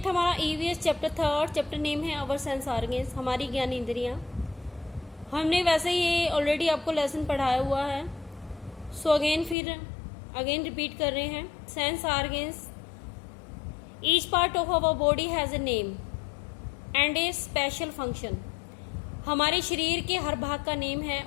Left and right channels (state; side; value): drops out; right; at 9.6 s